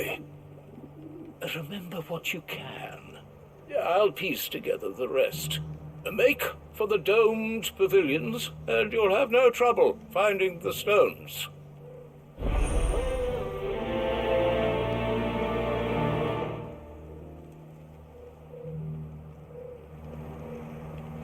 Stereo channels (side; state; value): both; identical; correlation 1.00